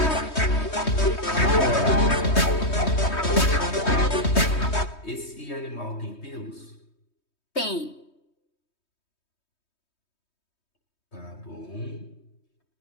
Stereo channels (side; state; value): right; late; 3.2 ms